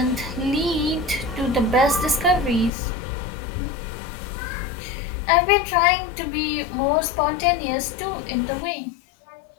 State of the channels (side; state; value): right; drops out; at 2.7 s